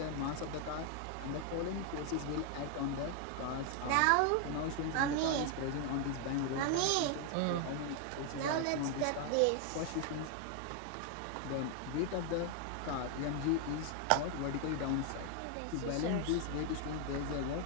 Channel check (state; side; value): different; both; correlation 0.00